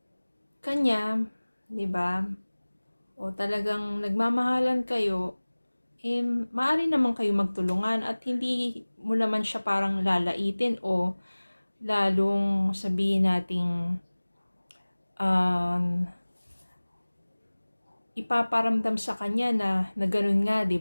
kanya, di ba? O talagang nagmamahalan kayo, maaari naman kayo magtulungan at hindi mo naman siya parang lalaitin o lalong sabihin nating ipaparamdam sa kanya na ganun nga, 'di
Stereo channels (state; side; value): inverted; both; correlation -1.00